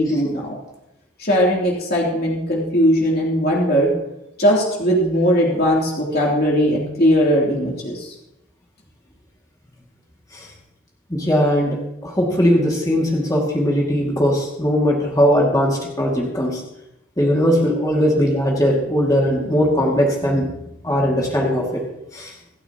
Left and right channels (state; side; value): normal; both; correlation 0.60